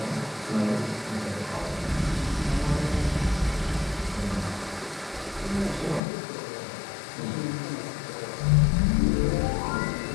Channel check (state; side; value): drops out; right; at 6.0 s